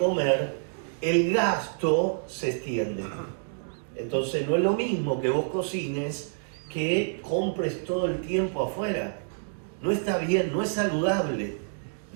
el gasto se extiende. Entonces no es lo mismo que vos cocines que compres todo el tiempo afuera. No está bien, no es saludable.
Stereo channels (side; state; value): left; silent; digital silence